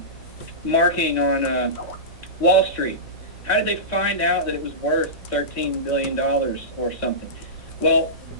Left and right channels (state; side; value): normal; both; correlation -0.18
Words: marking on Wall Street? How did they find out that it was worth $13 billion or something? Well,